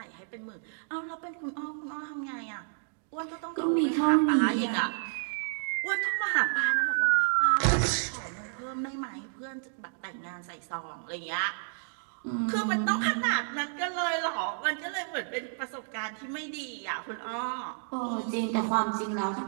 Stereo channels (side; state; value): left; silent; digital silence